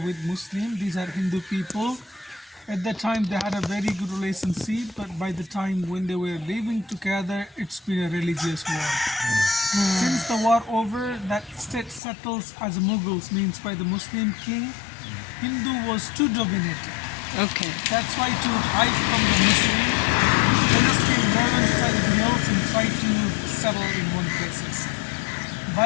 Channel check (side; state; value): right; drops out; at 12.0 s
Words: with Muslim. These are Hindu people. At that time, they had a very good relationship, but by the time when they were living together, it's been a religious war. Since the war over, that state settles as Mughals, means by the Muslim king. Hindu was too dominated. Okay. That's why to hide from the Muslim, they just came northern side of the hills and try to settle in one places.